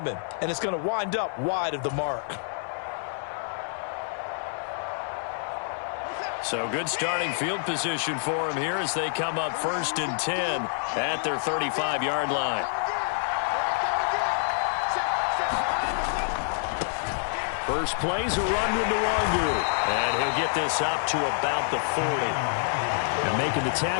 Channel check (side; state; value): right; silent; 60 dB below the other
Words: him, and it's going to wind up wide of the mark. So good starting field position for him here as they come up 1st and 10 at their 35-yard line. First play's a run to Nwangu, and he'll get this up to about the 40. And making the